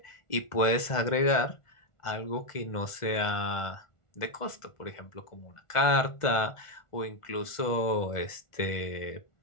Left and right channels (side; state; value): right; late; 1.4 ms